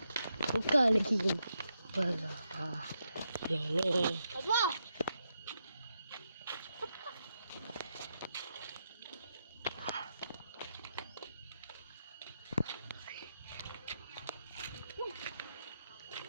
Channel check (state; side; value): inverted; both; correlation -0.83